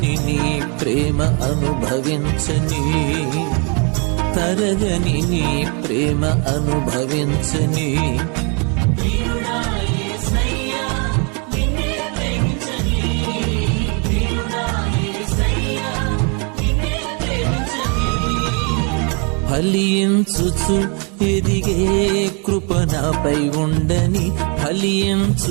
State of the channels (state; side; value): quieter; left; 35.0 dB